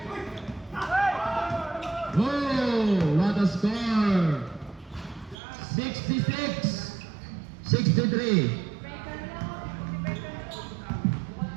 Oh, what a score. 66-63.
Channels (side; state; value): left; drops out; at 5.4 s